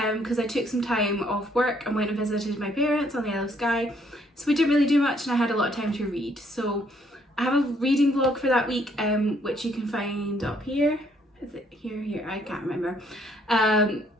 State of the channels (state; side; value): normal; both; correlation 0.67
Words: because I took some time off work and went and visited my parents on the Isle of Skye. So we didn't really do much and I had a lot of time to read. So I have a reading vlog for that week which you can find up here. Is it here? I can't remember. And